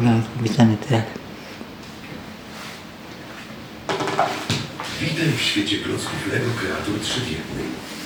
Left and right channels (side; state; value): both; identical; correlation 1.00